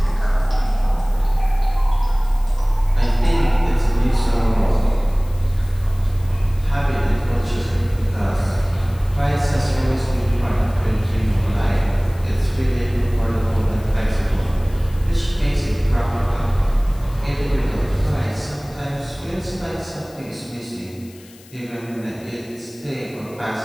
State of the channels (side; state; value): left; noise; hiss, 24 dB below the sound